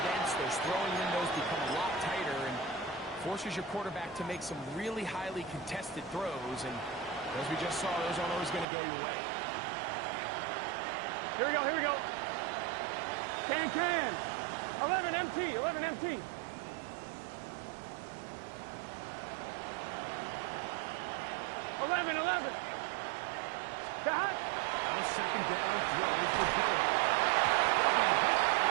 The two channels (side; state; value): left; drops out; at 8.7 s